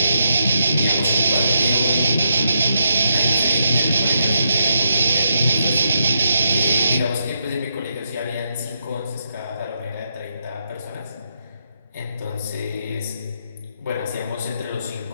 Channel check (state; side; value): inverted; both; correlation -0.79